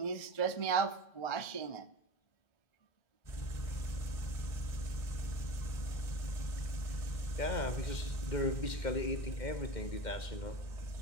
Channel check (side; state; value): right; late; 1.6 ms